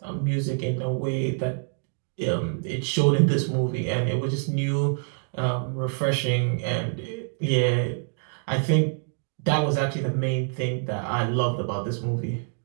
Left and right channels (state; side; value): silent; left; 59 dB below the other